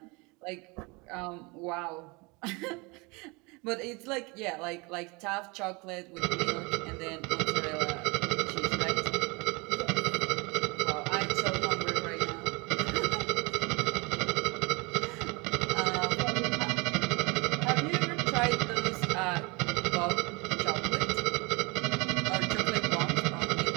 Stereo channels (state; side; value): quieter; left; 27.4 dB